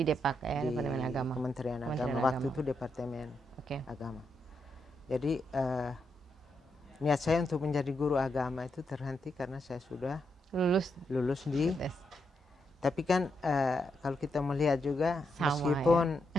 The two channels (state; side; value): normal; both; correlation 0.82